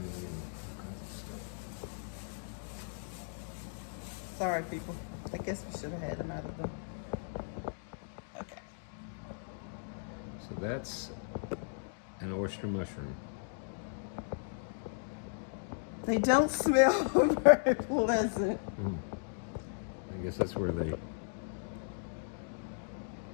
and all kinds of stuff. Sorry, people. I guess we should have had them out of the. Okay. So that's an oyster mushroom. They don't smell very pleasant. I guess that's where they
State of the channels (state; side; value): silent; right; digital silence